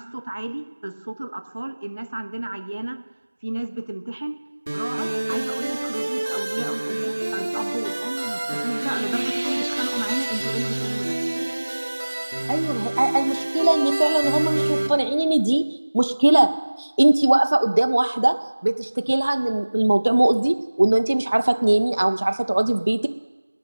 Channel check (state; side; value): inverted; both; correlation -1.00